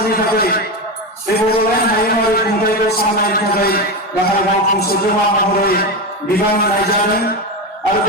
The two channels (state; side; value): normal; both; correlation 0.16